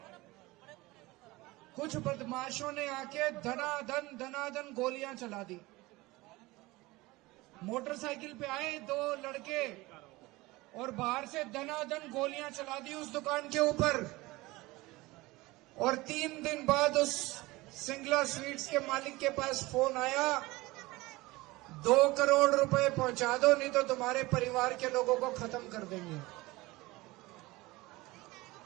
कुछ बदमाशों ने आके धनाधन गोलियां चला दी। मोटरसाइकिल पे आए 2 लड़के और बाहर से धनाधन गोलियां चला दी उस दुकान के ऊपर। और 3 दिन बाद उस सिंगला स्वीट्स के मालिक के पास फोन आया, 2 करोड़ रुपए पहुंचा दो, नहीं तो तुम्हारे परिवार के लोगों को खत्म कर देंगे।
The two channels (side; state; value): left; quieter; 20.9 dB